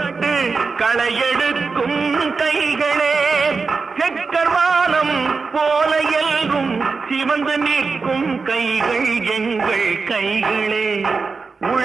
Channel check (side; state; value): left; quieter; 4.6 dB